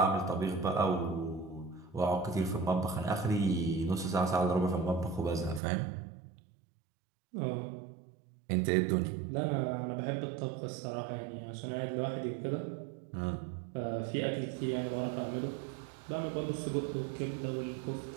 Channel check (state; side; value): drops out; left; at 5.6 s